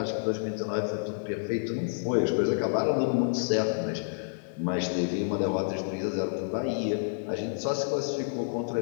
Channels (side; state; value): right; silent; digital silence